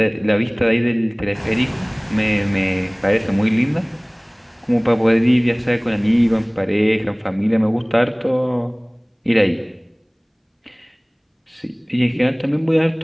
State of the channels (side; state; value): both; identical; correlation 1.00